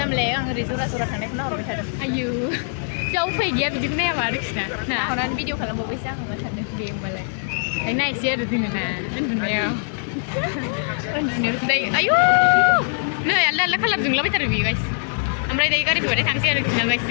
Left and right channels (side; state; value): right; silent; digital silence